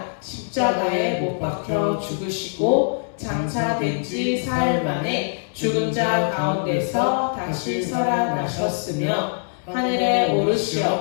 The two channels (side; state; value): right; silent; 64 dB below the other